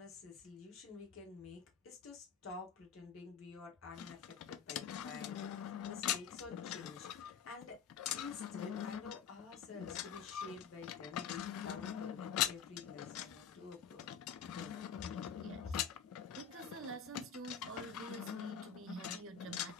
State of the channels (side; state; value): right; quieter; 7.6 dB